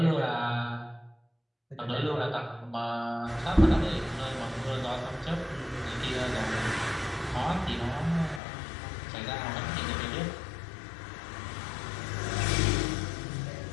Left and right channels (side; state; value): right; drops out; at 8.4 s